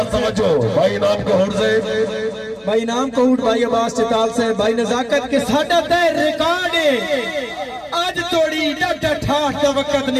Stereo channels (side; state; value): both; identical; correlation 1.00